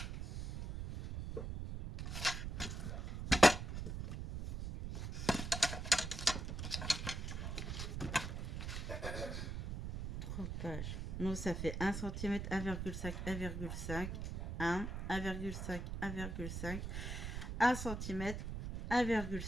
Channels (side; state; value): right; noise; rumble, 4 dB below the sound